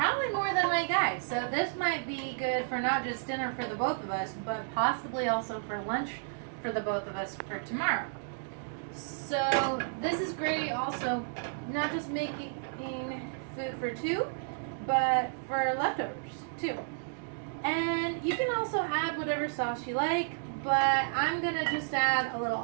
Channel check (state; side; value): silent; left; digital silence